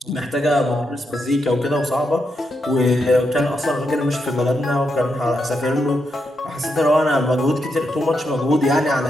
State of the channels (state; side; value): normal; both; correlation 0.83